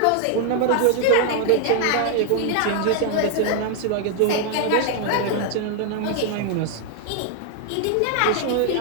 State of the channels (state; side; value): different; both; correlation 0.00